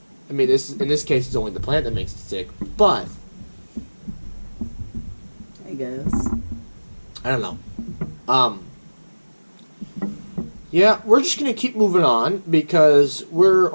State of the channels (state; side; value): inverted; both; correlation -1.00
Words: I mean, in this case, it's only the plant that makes it sick. But I guess. I don't know. Yeah, we're just going to keep moving on because we're